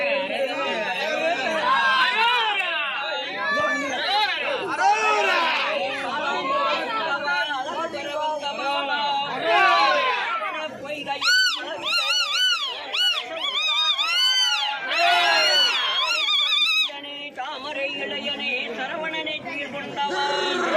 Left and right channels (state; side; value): identical; both; correlation 1.00